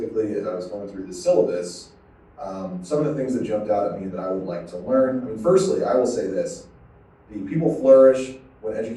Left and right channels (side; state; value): both; identical; correlation 1.00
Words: as I was going through the syllabus, some of the things that jumped out at me that I would like to learn. I mean, firstly, I will say this: the people flourish when